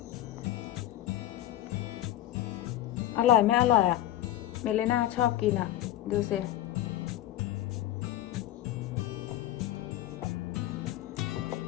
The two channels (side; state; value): right; quieter; 13.4 dB